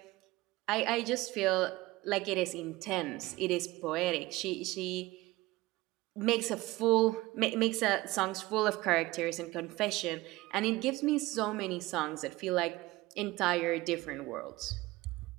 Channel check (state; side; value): quieter; left; 19.6 dB